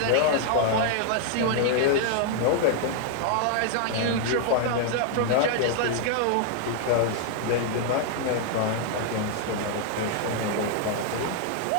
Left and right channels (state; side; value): different; both; correlation 0.00